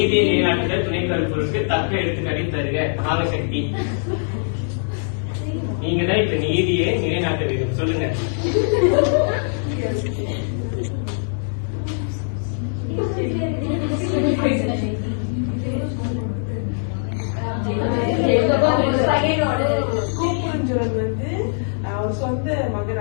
நிலைநாட்டுதல் துணை கருப்பொருளுக்கு தக்க எடுத்துக்காட்டை தருக. நாகசக்தி, நீங்க தான் இப்ப நீதியை நிலைநாட்ட வேண்டும். சொல்லுங்க. வந்து அவர் சொந்த மகன்,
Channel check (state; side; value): silent; right; 63 dB below the other